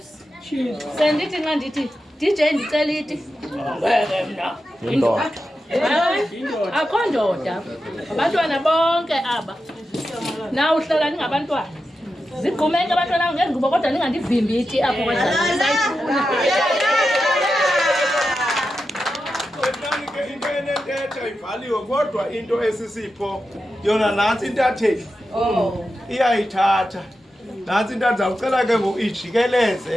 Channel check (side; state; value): both; normal; correlation 0.90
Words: sendithi nxa ndithi DJ ndicela iti mna akho ndoda abantwana bonke aba na uhlala ningabantwana zigqumeke abantwana ngengubo kodwa ningandivimbi iti apho kwasayifuna into enentetha ivaliwe kodwa into esisipho yona nantsi intatheli iyayithatha Nansi into ndizawucela ke ngoku